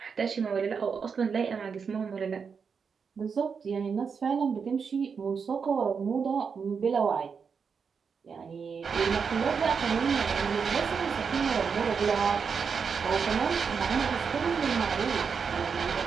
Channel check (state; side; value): quieter; left; 6.0 dB